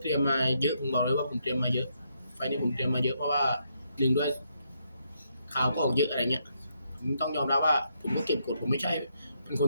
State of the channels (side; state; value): both; inverted; correlation -0.77